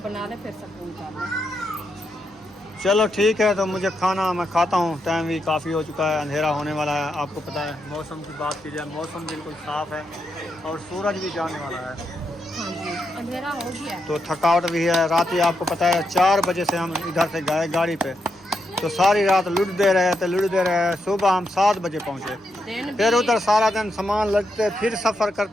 बना ले फिर सुकून कर ले। चलो ठीक है, तो मुझे खाना मैं खाता हूँ, टाइम भी काफ़ी हो चुका है, अंधेरा होने वाला है। आपको पता है मौसम की बात की जाए, मौसम बिल्कुल साफ़ है और सूरज भी जाने वाला है, हाँ जी, अंधेरा हो गया। तो थकावट भी है। रात ही आपको पता है 4 बजे से हम इधर से गए गाड़ी पे, तो सारी रात लुटते रहे। सुबह हम 7 बजे पहुँचे, फिर उधर सारा दिन सामान लगते, फिर सफ़र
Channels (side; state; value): both; normal; correlation 0.82